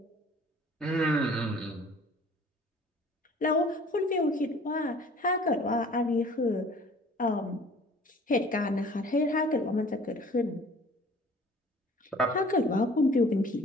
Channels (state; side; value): normal; both; correlation 0.50